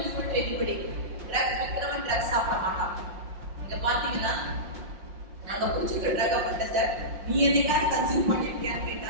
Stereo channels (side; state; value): left; late; 5.6 ms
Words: to anybody. Drugs விக்கிறவன் ட்ரக்ஸ் சாப்பிட மாட்டான். இங்க பாத்தீங்கன்னா நாங்க குடிச்சிருக்க ட்ரக் அஃபெண்டர்ஸை நீ என்னைக்காவது கன்சியூம் பண்ணிருக்கியான்னு